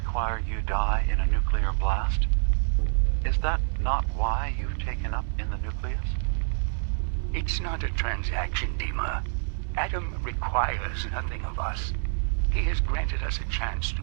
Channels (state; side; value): silent; left; digital silence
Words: you die in a nuclear blast? Is that not why you've taken up in the nucleus? It's not a transaction, Dima. Adam requires nothing of us. He has granted us a chance to